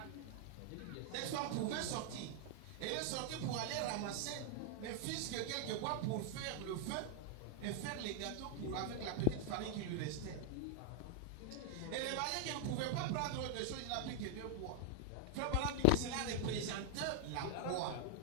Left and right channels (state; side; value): different; both; correlation 0.00